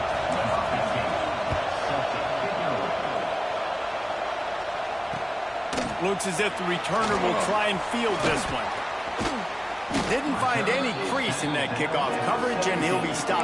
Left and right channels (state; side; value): identical; both; correlation 1.00